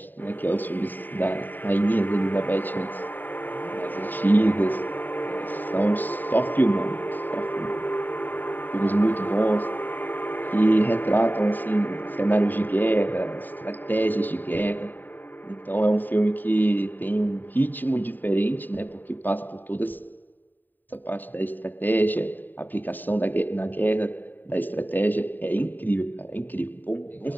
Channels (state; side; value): late; right; 0.090 ms